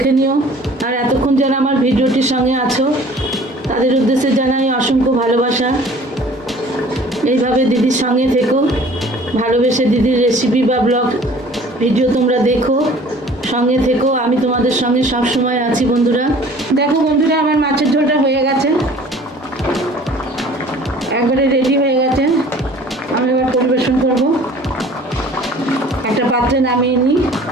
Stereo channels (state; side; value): normal; both; correlation 0.49